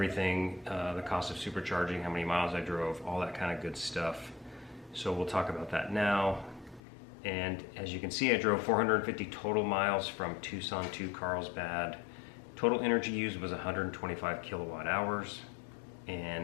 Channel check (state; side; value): drops out; right; at 6.8 s